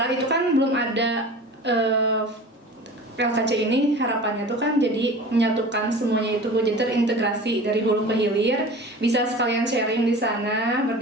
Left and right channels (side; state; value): both; normal; correlation 0.38